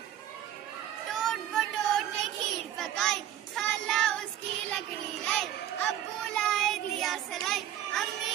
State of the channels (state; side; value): quieter; left; 11.5 dB